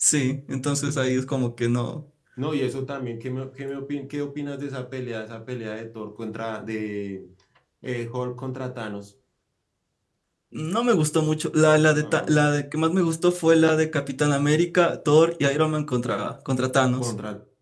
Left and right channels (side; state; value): both; identical; correlation 1.00